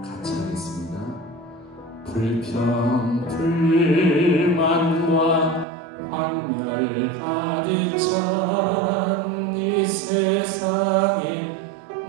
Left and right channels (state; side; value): drops out; left; at 5.7 s